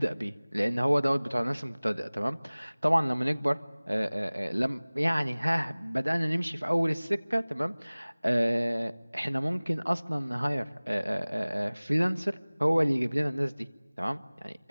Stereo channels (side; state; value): both; inverted; correlation -1.00